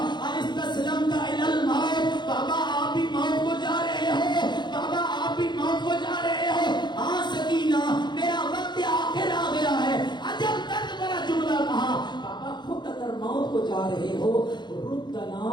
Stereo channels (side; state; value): right; late; 0.21 ms